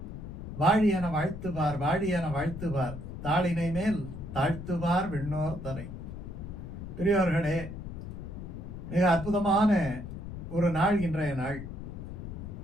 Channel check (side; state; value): left; noise; rumble, 9 dB below the sound